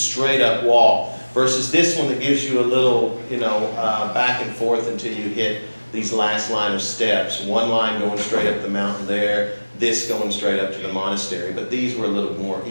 up walk, versus this one that gives you a little, back and forth until you hit these last line of steps. One line going straight up the mountain there, this going straight up to the monastery. But these were a little more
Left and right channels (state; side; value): inverted; both; correlation -1.00